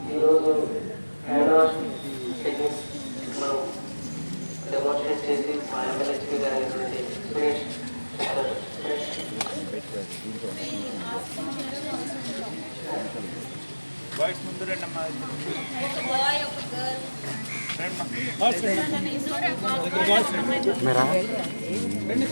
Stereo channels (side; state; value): both; inverted; correlation -1.00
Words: ఈరోజు హ్యాండ్ వాష్ టెక్నిక్స్ మనం డెమోన్స్ట్రేట్ చేసి మా ఎంఎల్హెచ్పి గారు అయినటువంటి సురేష్ బాయ్స్ ముందు రండమ్మా.